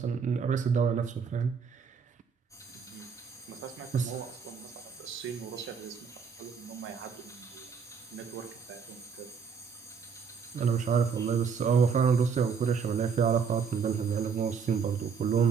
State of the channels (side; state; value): left; quieter; 6.2 dB